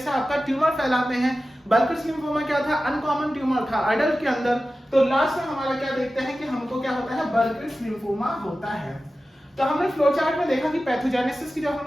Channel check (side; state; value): both; normal; correlation 0.94